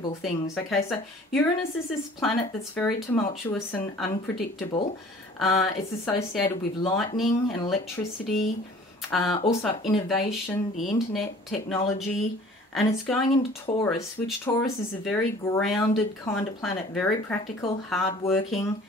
things. Okay, so Uranus is this planet that's very tumultuous and unpredictable. It's associated with lightning and electricity, also innovation, the internet, technology, and it's going into Taurus, which Taurus is a very grounded kind of planet, very practical, hardworking.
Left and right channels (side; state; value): both; normal; correlation 0.49